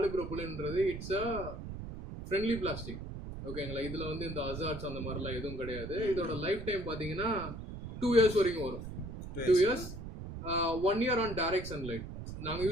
இட்ஸ் அ ஃப்ரெண்ட்லி பிளாஸ்டிக். ஓகேங்களா? இதில் வந்து இந்த அசார்ட்ஸ் அந்த மாதிரிலாம் எதுவும் கிடையாது. இதோட லைஃப் டைம் பார்த்தீங்கன்னா 2 years வரைக்கும் வரும். 2 years, 1 year on direct sunlight. நாங்கள்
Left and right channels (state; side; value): noise; right; rumble, 9 dB below the sound